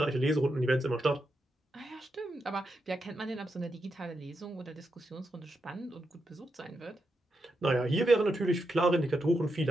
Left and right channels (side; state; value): both; normal; correlation 0.85